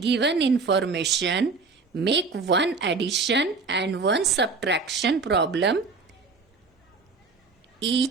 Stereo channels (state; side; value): quieter; left; 4.3 dB